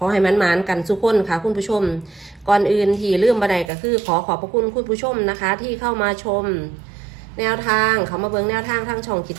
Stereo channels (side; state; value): left; drops out; at 3.7 s